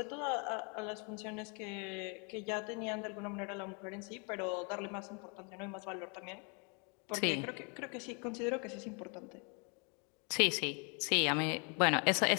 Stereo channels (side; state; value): right; quieter; 35.8 dB